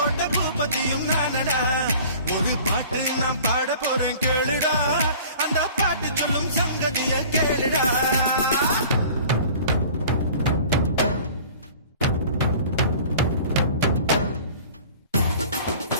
பூப்பதியும் நானடா. ஒரு பாட்டு நான் பாட போறேன் கேளுடா, அந்த பாட்டு சொல்லும் சங்கதிய கேளுடா.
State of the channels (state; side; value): inverted; both; correlation -0.46